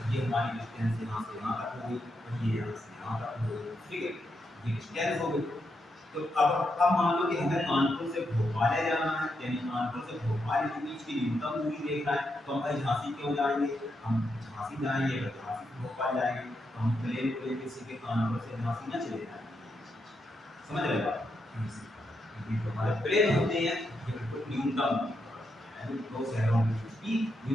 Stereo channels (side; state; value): both; normal; correlation 0.82